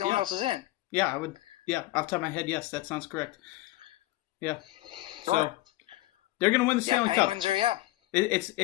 one else is in. Yeah, I would. Yeah, off the top of my head, yes, that sounds correct. Yeah. So Sure. they're gonna win the Stanley Cup. Penguins are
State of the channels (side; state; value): right; quieter; 17.9 dB